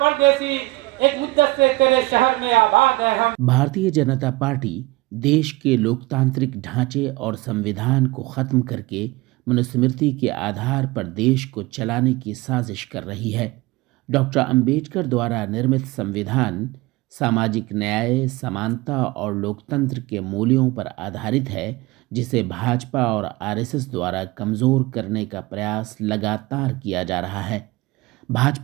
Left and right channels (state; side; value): quieter; left; 21.3 dB